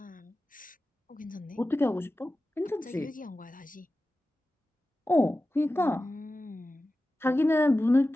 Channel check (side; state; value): both; normal; correlation 0.94